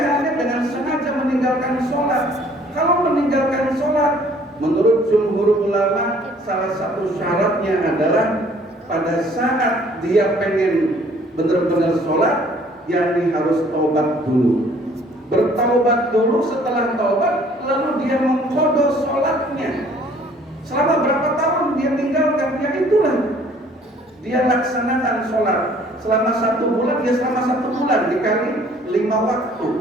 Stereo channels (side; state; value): both; normal; correlation 0.57